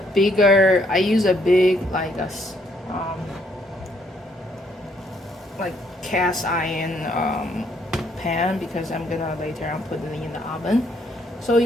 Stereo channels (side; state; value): both; normal; correlation 0.70